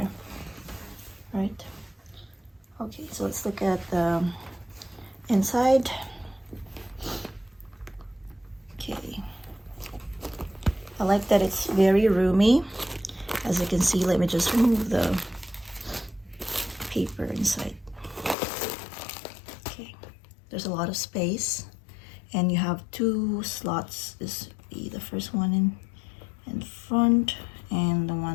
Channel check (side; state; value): right; drops out; at 18.4 s